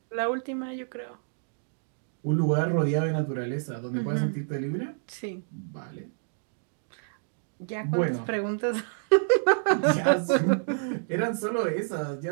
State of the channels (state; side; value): silent; left; digital silence